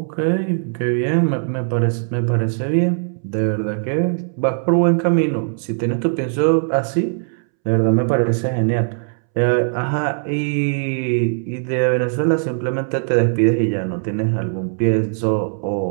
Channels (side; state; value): left; silent; 66 dB below the other